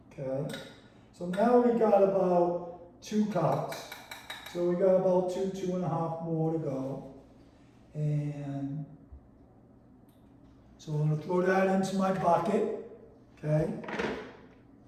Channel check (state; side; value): identical; both; correlation 1.00